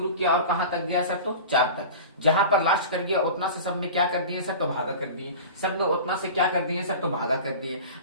किया और कहां तक गया सर? तो 4 तक। जहां पर लास्ट कर गया उतना से सब में क्या कर दिए सर? तो भागा कर दिए। सब में उतना से क्या कर दिए सर? तो भागा कर दिए।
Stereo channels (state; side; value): inverted; both; correlation -0.34